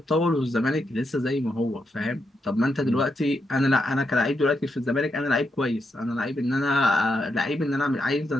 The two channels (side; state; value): both; normal; correlation 0.83